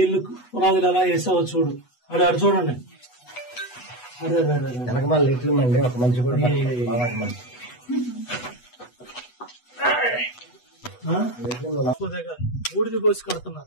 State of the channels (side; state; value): right; late; 8.1 ms